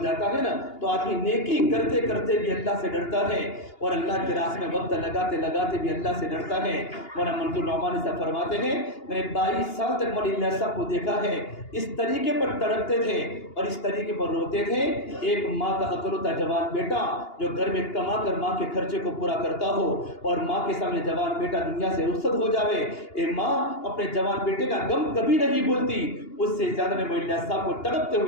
جاتا ہے نا تو آدمی نیکی کرتے کرتے بھی اللہ سے ڈرتا ہے، اور اللہ کے راستے میں وقت لگاتے لگاتے بھی اللہ سے ڈرتا ہے. مولانا منظور نعمانی صاحب فرماتے ہیں میں نے 22 سال تک مولانا اللہ صاحب کو دیکھا ہے اس طریقے پر تڑپتے تھے اور اس طریقے پر روتے تھے. ایک ماں کا اکلوتا جوان بیٹا جو گھر میں کما کر ماں کے خرچے کو پورا کرتا ہو اور ماں کے سامنے جوان بیٹا دنیا سے رخصت ہو جاوے، اے ماں اپنے جوان بیٹے کا غم کبھی نہیں بھولتی. اس سے زیادہ میں مولانا اللہ صاحب کو تڑپتے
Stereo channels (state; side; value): late; right; 2.8 ms